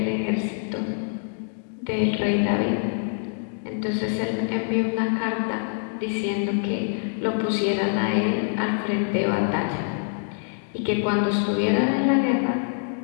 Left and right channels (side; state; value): right; silent; digital silence